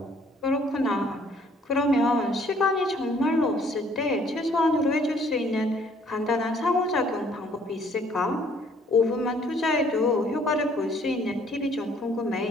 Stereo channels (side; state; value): both; normal; correlation 0.61